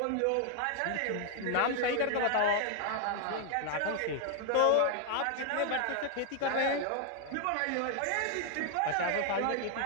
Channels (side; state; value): both; different; correlation 0.00